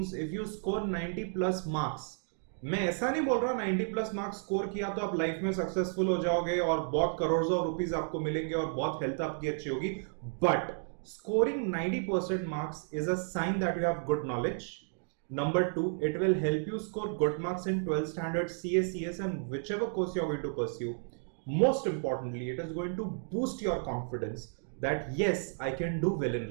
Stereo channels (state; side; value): silent; left; 56 dB below the other